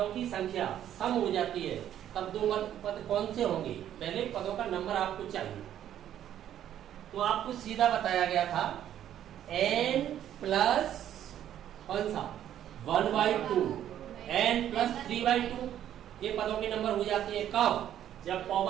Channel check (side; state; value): left; quieter; 10.9 dB